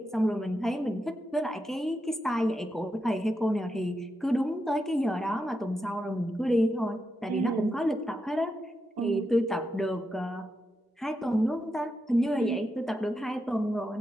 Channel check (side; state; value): both; normal; correlation 0.86